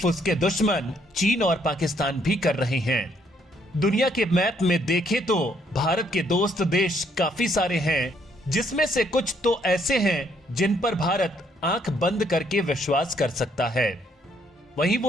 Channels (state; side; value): normal; both; correlation 0.69